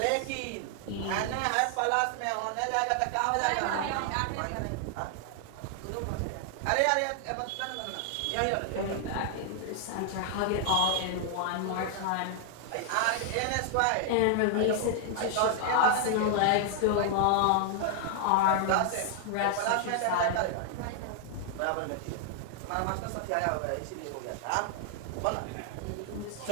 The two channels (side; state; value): both; different; correlation 0.00